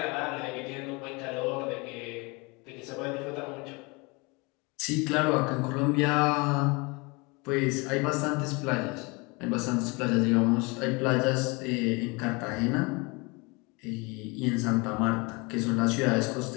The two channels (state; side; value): quieter; right; 27.6 dB